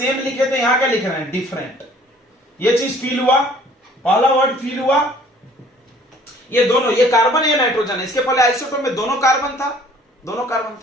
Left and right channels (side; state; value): both; normal; correlation 0.55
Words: लिखे थे, यहां क्या लिख रहे हैं डिफरेंट। ये चीज फील हुआ, पहला वर्ड फील हुआ। ये दोनों, ये कार्बन है नाइट्रोजन है, इसके पहले आइसोटोप में दोनों कार्बन था,